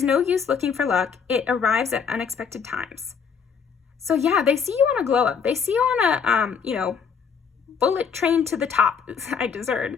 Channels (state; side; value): quieter; right; 6.4 dB